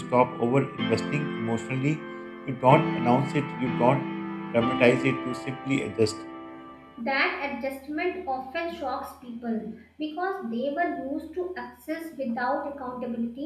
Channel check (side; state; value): both; identical; correlation 1.00